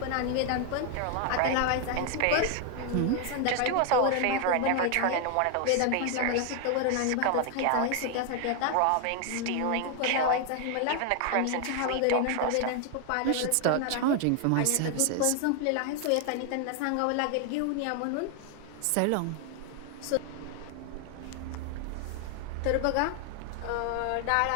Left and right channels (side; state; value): both; different; correlation 0.00